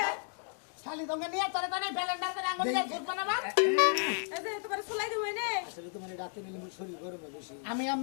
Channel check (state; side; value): silent; right; 55 dB below the other